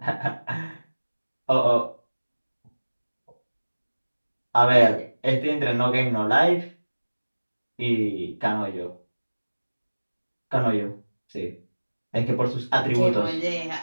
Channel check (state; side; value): inverted; both; correlation -1.00